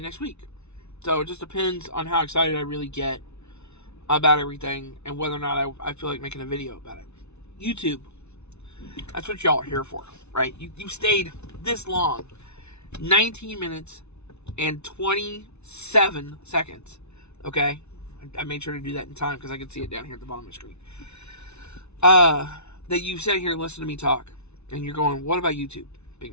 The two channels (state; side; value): late; right; 0.81 ms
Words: next week. So it just depends on how excited I really get about everything and whether or not I feel like making a video about it. YouTube. That's what y'all are here for, right? You stayed this long. 19 minutes and 27 seconds. Okay? I made sure to do that in time because I could see it down here at the bottom of the screen. That you sat here and listened to me talk. And you're going, what about YouTube, Big